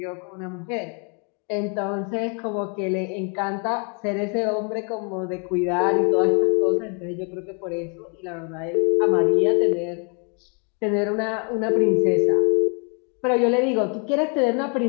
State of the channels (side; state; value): right; quieter; 37.5 dB